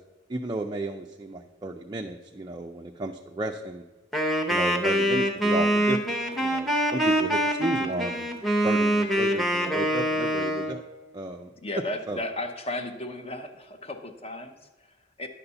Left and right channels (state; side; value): normal; both; correlation 0.63